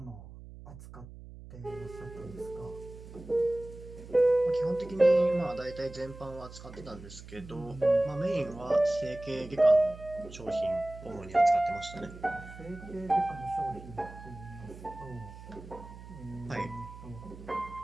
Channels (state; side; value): noise; right; hum, 15 dB below the sound